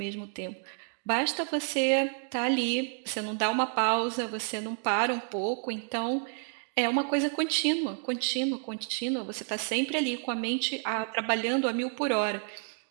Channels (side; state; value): left; silent; 56 dB below the other